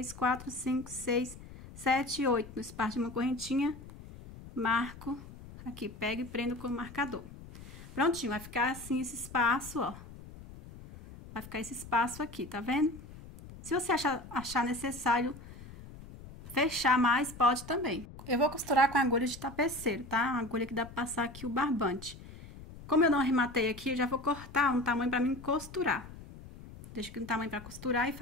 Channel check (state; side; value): noise; left; rumble, 16 dB below the sound